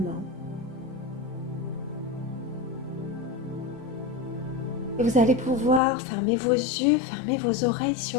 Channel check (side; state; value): right; drops out; at 5.8 s